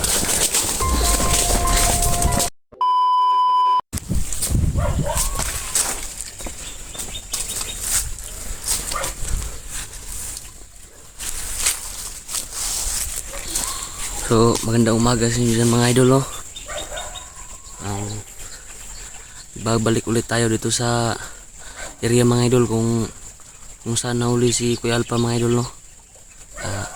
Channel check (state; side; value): identical; both; correlation 1.00